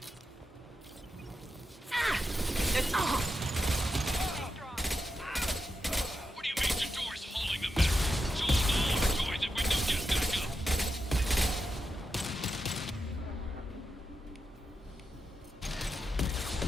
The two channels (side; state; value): both; normal; correlation 0.87